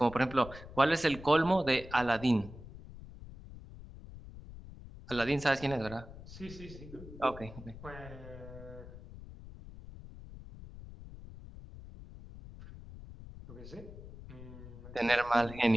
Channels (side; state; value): left; noise; rumble, 15 dB below the sound